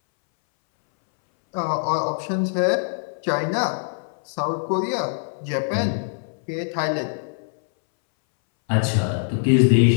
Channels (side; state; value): right; silent; 62 dB below the other